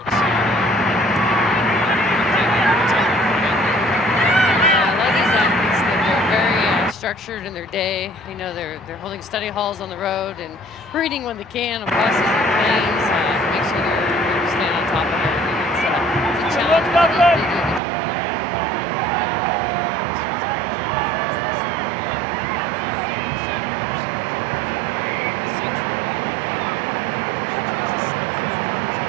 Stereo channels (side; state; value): left; drops out; at 17.8 s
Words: to a lot of these athletes, they're very structured in their day. You know, they're holding study halls on the road and reading when they can on buses and planes to make sure they're staying on top of everything. It's a challenge, but they do a good job at it.